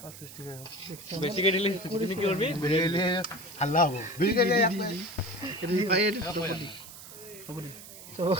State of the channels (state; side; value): noise; right; hiss, 15 dB below the sound